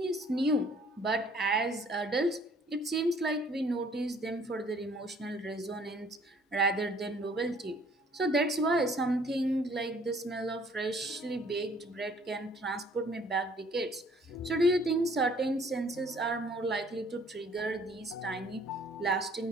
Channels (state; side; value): normal; both; correlation 0.58